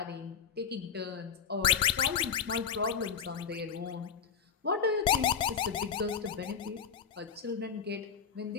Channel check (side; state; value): right; quieter; 7.0 dB